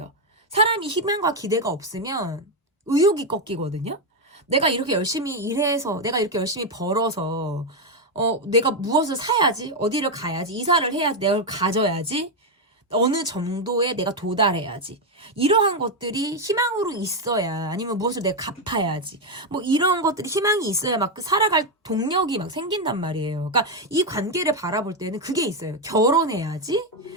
사람이 희망과 기대가 없으면 의욕이 꺾이거든요. 내가 이렇게 열심히 일해서 내가 이렇게 열심히 벌어서 내가 무엇을 사야지 어디를 가야지 이사를 해야지 내가 가져야지 어느 정도에 내가 도달해야지. 이러한 것들이 희망으로 있어야, 아니면 무엇을 내가 갚아야지. 뭐 이런 것들이 희망이 있어야 막 살아갈 동력이 막 생긴단 말이에요. 그러니까 이 관계를 바라볼 때는 그게 있어요. 결혼해야지.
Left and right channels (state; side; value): normal; both; correlation 0.05